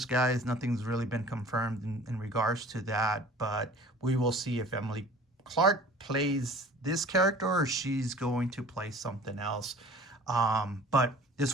guys. Nothing's really been confirmed in regards to that, but we will see if Emily Clark plays this character or she's going to play something else. But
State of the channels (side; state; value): both; normal; correlation 0.46